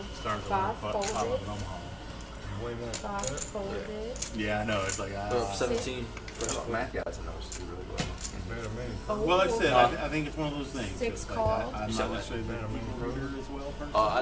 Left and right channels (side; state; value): both; identical; correlation 1.00